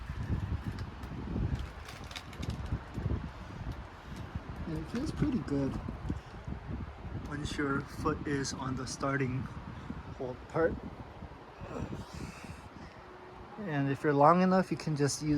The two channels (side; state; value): both; identical; correlation 1.00